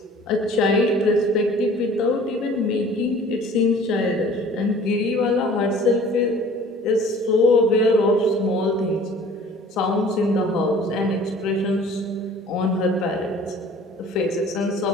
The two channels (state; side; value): normal; both; correlation 0.49